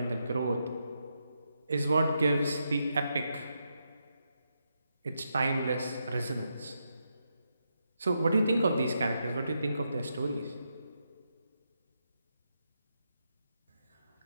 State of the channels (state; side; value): inverted; both; correlation -0.83